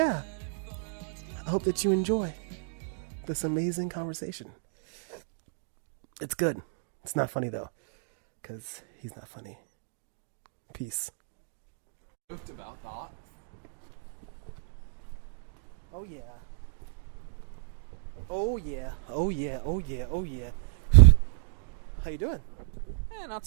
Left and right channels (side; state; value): left; silent; digital silence